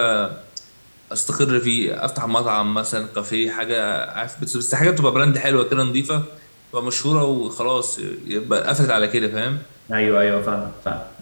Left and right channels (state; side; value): inverted; both; correlation -1.00